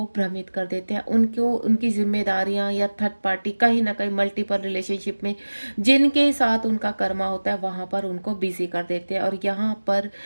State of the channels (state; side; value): inverted; both; correlation -1.00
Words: भ्रमित कर देते हैं, उनको उनकी जिम्मेदारियां या थर्ड पार्टी कहीं ना कहीं मल्टीपल रिलेशनशिप में जिनके साथ उनका कर्मा होता है वहाँ पर उनको बिजी कर देते हैं, और यहाँ पर